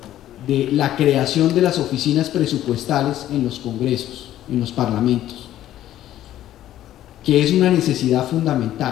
de la creación de las oficinas presupuestales en los congresos, en los parlamentos, que es una necesidad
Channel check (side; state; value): right; quieter; 12.8 dB